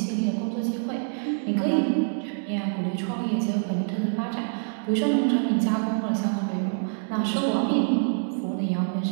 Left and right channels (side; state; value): left; silent; digital silence